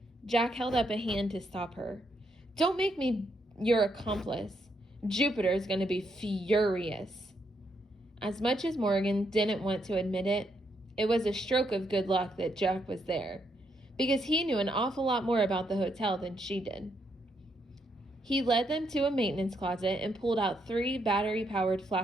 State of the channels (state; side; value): normal; both; correlation 0.77